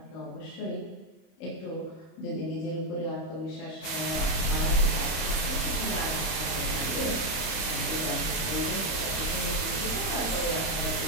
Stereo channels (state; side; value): late; right; 31 ms